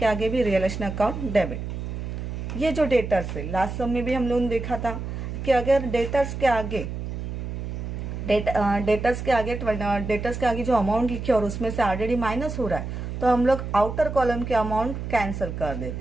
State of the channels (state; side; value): noise; right; hum, 6 dB below the sound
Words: आगे भी रियलाइजेशन अकाउंट डेबिट। ये जो डेटर्स है, लास्ट सब में भी हम लोगों ने देखा था कि अगर डेटर्स के आगे जो अमाउंट लिखे और उसमें से ऑलरेडी माइनस हो रहा है, तो हम लोग आउटर कॉलम के अमाउंट कैंसिल कर